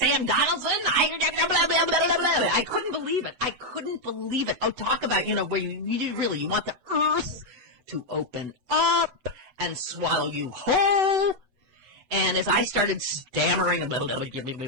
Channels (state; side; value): late; left; 7.9 ms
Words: Donaldson. I couldn't believe it. I couldn't believe it. Oh, talk about, where you want the earth to open up and swallow you whole. And as I started stammering, I'm so